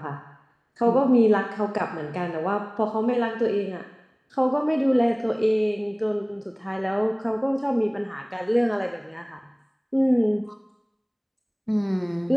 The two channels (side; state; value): both; identical; correlation 1.00